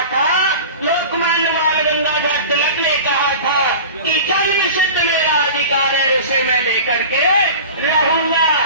था, लोकमान्य बाल गंगाधर तिलक ने कहा था कि जन्म सिद्ध मेरा अधिकार है, उसे मैं लेकर के रहूंगा।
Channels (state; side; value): inverted; both; correlation -0.36